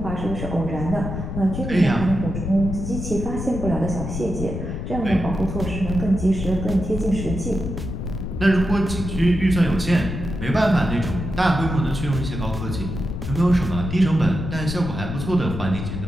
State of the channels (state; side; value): noise; left; rumble, 5 dB below the sound